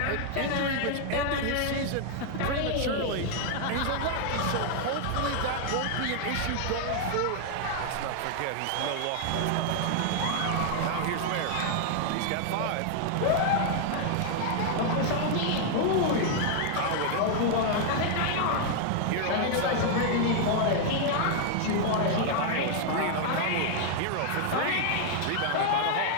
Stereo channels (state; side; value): different; both; correlation 0.00